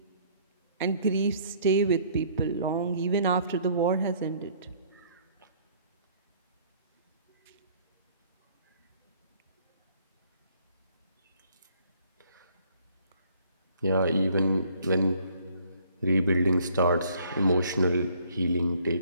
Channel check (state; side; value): inverted; both; correlation -0.60